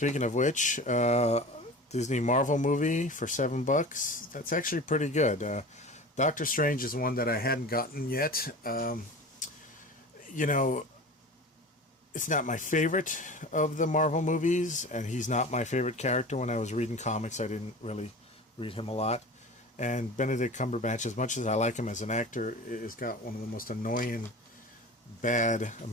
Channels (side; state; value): both; normal; correlation 0.35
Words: of which, Disney Marvel movie for $7, that's actually pretty good. Doctor Strange is one that I hadn't gotten yet. You know, it's not my favorite of the Marvel movies, and he's not my favorite character. When I was reading comics, I didn't really read him a lot. And Benedict Cumberbatch, as much as I like him as an actor, has got one of the most annoying, bad